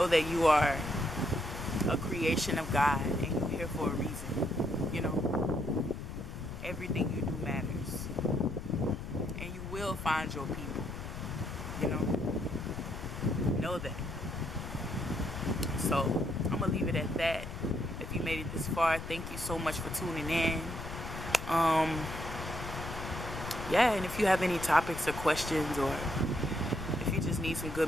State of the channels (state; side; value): noise; left; rumble, 8 dB below the sound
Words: that you are a creation of God, and you're here for a reason. You know, everything you do matters, and you will find your people. You know that. So I'm gonna leave it at that. If you made it this far, thank you so much for tuning in. Yeah, and if you have any topics or questions, or if you just need some good